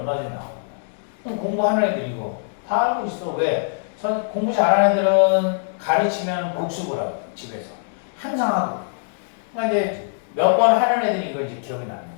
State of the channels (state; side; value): silent; right; 64 dB below the other